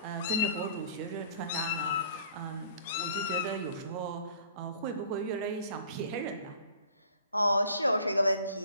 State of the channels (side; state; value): both; inverted; correlation -0.52